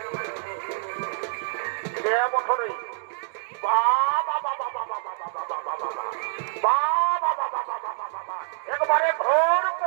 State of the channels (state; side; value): silent; left; digital silence